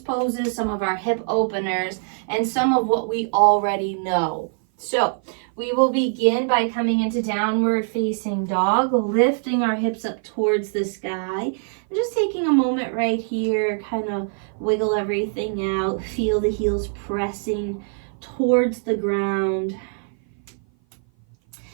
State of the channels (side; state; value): left; silent; 56 dB below the other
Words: some of our hip openers, and some of what we already know. So we will begin by coming into downward facing dog, lifting our hips up towards the sky, and just taking a moment right here, kind of wiggle everything out, feel the heels pressing towards the ground.